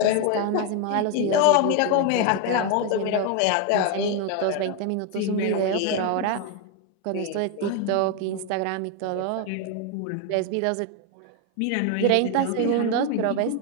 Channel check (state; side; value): different; both; correlation 0.01